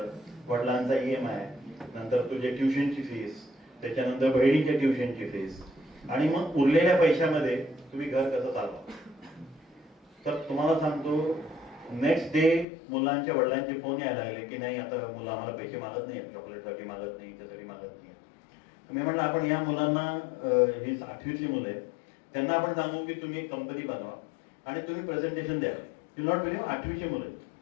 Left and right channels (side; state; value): right; drops out; at 12.7 s